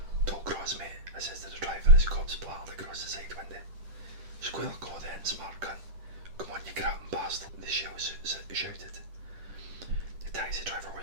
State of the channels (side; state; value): left; late; 10 ms